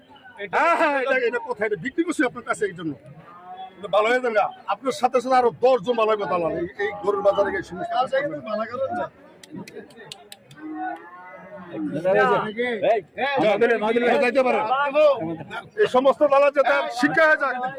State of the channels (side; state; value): both; identical; correlation 1.00